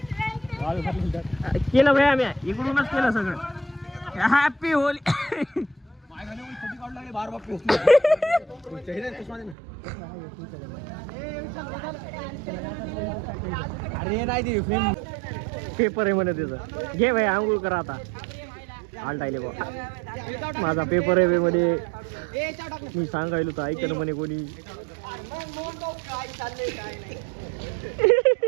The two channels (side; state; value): left; drops out; at 9.6 s